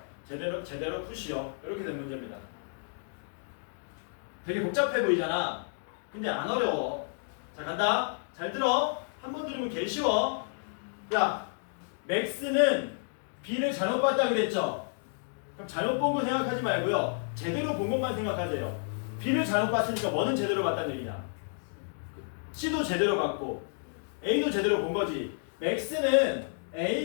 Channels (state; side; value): silent; right; digital silence